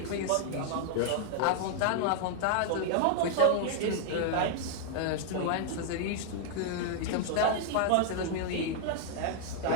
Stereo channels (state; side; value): different; both; correlation -0.01